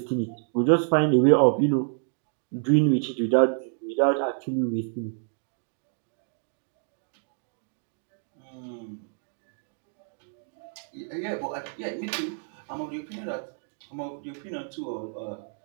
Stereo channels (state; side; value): silent; left; digital silence